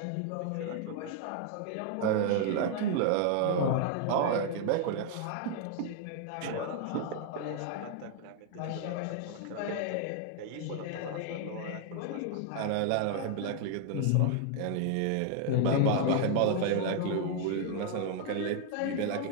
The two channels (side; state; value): both; different; correlation 0.00